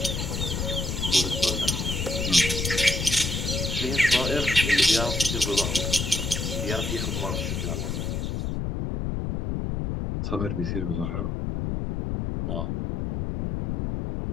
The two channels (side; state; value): left; noise; rumble, 2 dB below the sound